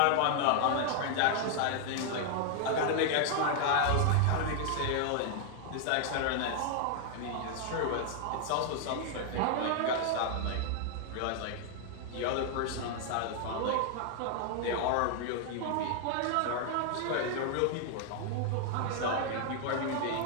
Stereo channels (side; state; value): both; different; correlation 0.00